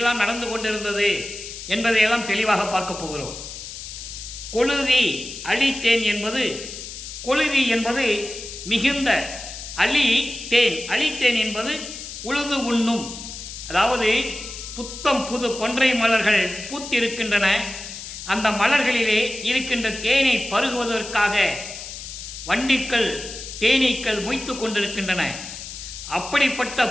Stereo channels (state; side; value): noise; left; hiss, 10 dB below the sound